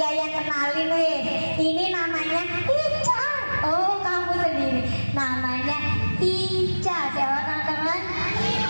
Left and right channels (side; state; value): both; inverted; correlation -1.00